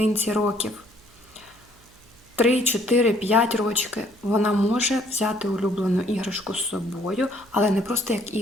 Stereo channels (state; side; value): noise; right; hum, 28 dB below the sound